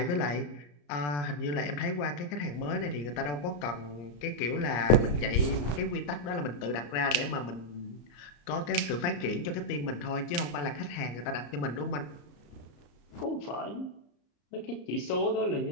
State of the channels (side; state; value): right; late; 33 ms